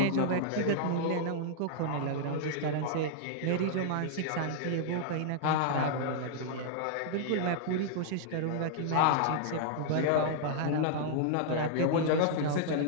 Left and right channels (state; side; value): different; both; correlation -0.01